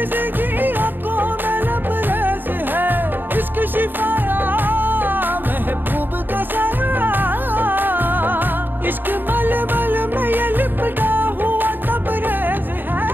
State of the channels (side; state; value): left; late; 0.093 ms